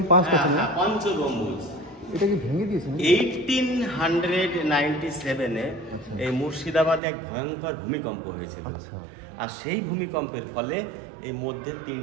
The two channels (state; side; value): drops out; left; at 7.0 s